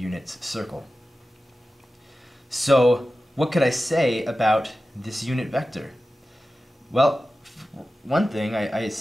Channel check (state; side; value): normal; both; correlation 0.94